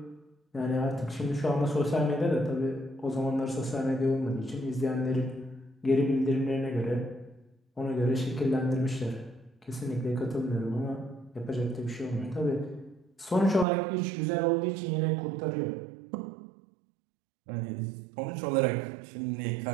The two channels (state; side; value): drops out; left; at 13.7 s